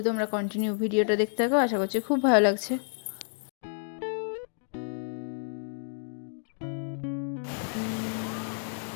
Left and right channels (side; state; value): right; silent; digital silence